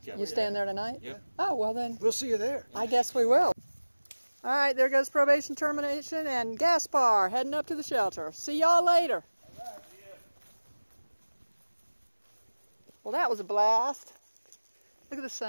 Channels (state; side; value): inverted; both; correlation -1.00